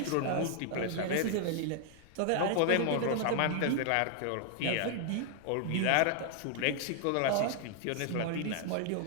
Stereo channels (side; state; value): both; different; correlation 0.00